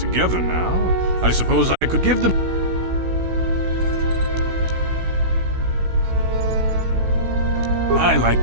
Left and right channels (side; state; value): left; late; 16 ms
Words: now, I suppose I could give them... I like